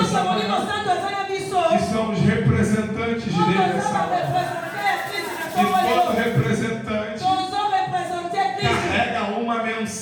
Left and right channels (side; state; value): both; identical; correlation 1.00